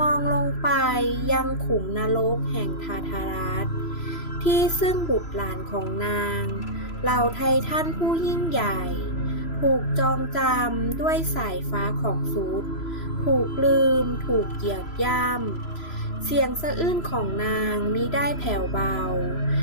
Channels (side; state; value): right; late; 3.0 ms